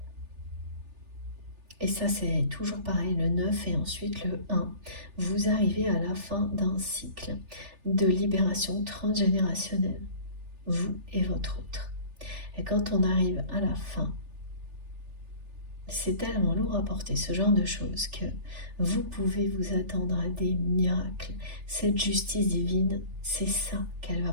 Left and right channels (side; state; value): left; late; 3.4 ms